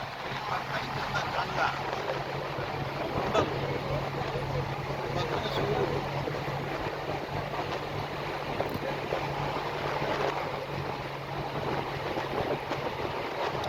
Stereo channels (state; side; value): identical; both; correlation 1.00